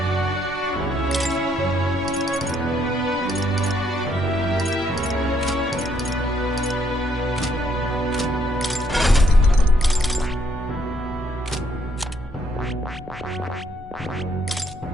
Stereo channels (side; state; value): both; normal; correlation 0.70